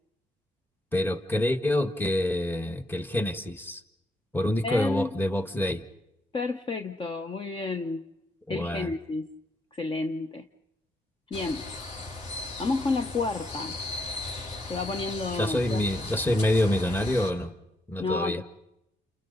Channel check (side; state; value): both; normal; correlation 0.77